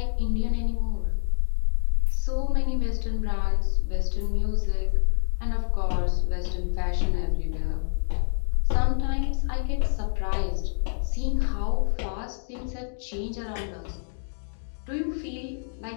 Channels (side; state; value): right; silent; digital silence